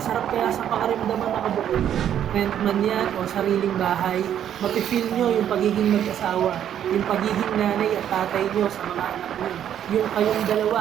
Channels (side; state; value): left; quieter; 10.0 dB